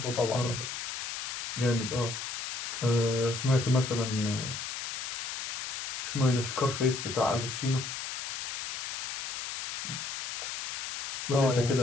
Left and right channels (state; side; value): noise; left; hiss, 7 dB below the sound